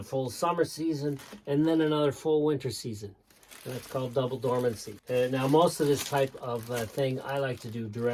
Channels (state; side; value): identical; both; correlation 1.00